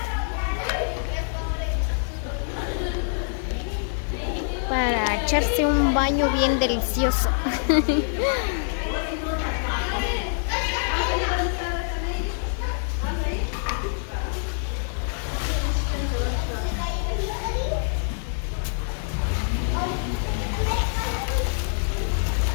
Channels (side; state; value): right; silent; 62 dB below the other